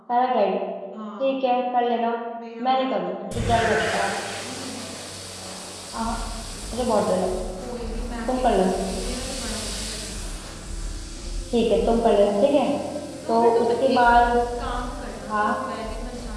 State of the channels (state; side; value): identical; both; correlation 1.00